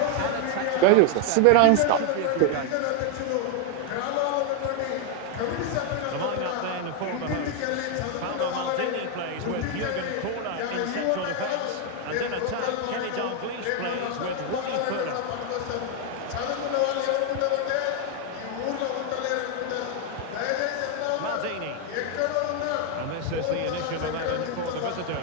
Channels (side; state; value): both; different; correlation 0.00